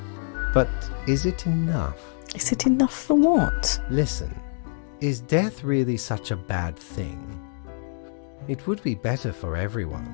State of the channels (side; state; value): right; silent; digital silence